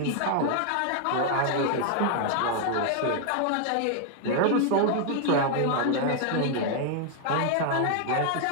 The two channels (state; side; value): different; both; correlation 0.00